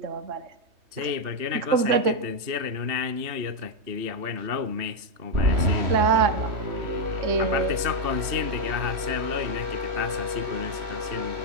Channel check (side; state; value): left; late; 3.2 ms